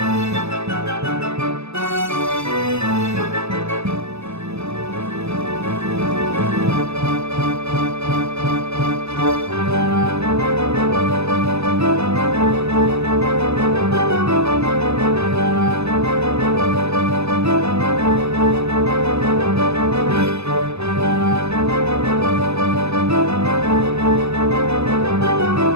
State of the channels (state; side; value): late; left; 0.79 ms